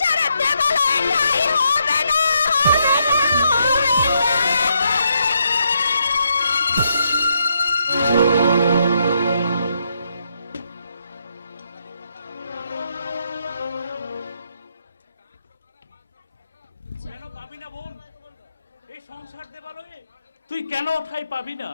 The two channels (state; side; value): inverted; both; correlation -0.78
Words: দেবালয়ে ঠাঁই হবে না, হবে না, হবে না। কেন পাবি না বোন এই সংসার দেবালয়ে? তুই কেন ঠাই পাবি না?